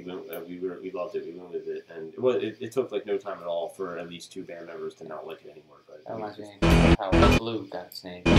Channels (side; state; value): both; identical; correlation 1.00